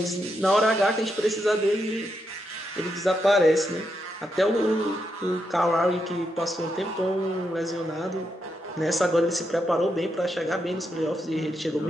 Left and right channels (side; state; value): both; normal; correlation 0.82